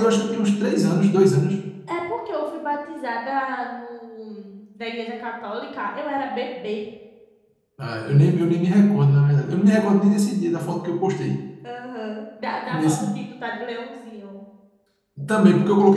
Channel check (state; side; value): identical; both; correlation 1.00